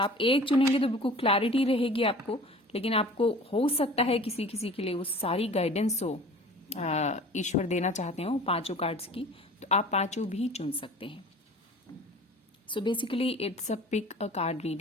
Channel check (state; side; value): normal; both; correlation 0.44